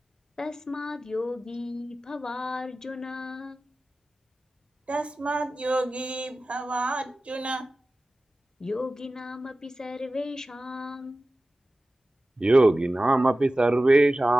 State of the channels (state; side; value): normal; both; correlation 0.96